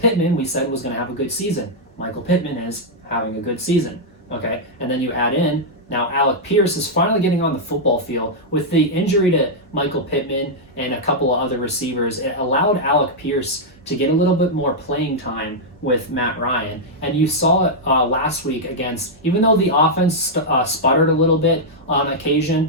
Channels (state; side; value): normal; both; correlation -0.05